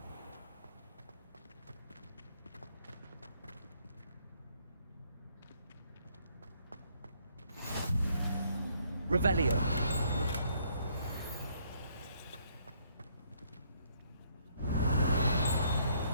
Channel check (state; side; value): inverted; both; correlation -0.68